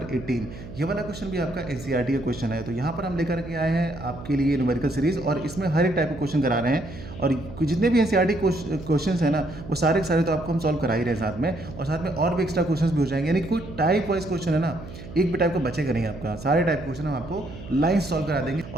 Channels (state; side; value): noise; right; hum, 14 dB below the sound